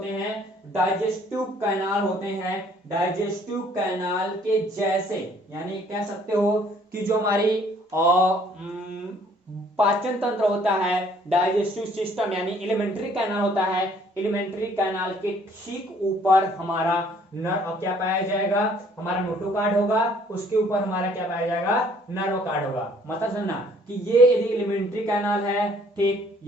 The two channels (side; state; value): both; normal; correlation 0.60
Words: हैं, डाइजेस्टिव कैनाल होते हैं, डाइजेस्टिव कैनाल के जैसे। यानी कह सकते हो कि जो हमारी पाचन तंत्र होता है, डाइजेस्टिव सिस्टम यानी एलिमेंट्री कैनाल होता है, एलिमेंट्री कैनाल के ठीक ऊपर हमारा नर्व क्या पाया जाएगा, हमारा नोटो कार्ड होगा, उसके ऊपर हमारा क्या पाया जाएगा, नर्व कार्ड होगा। मतलब समझना कि ये यदि एलिमेंट्री कैनाल है, ठीक,